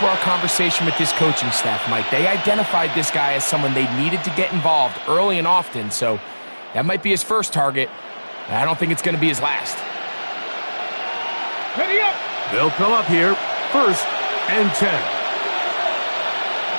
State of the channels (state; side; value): inverted; both; correlation -1.00